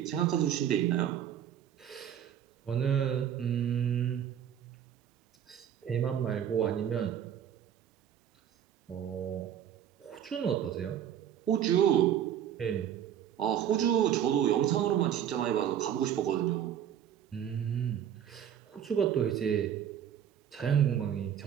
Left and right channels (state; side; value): quieter; left; 9.7 dB